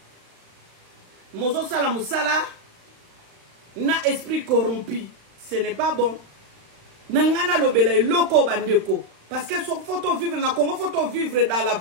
Mozo sala moussala na esprit corrompu. Ce n'est pas bon. Nangana lobele loko bandeko. Parce que faut vivre dans Congo, faut vivre dans la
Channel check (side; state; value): left; late; 35 ms